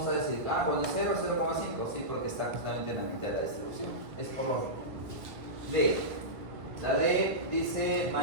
a decir, cuando 0, 0,5, sí, porque está justamente en la mitad de la distribución. Es por lo D. La D dice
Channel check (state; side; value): late; left; 1.8 ms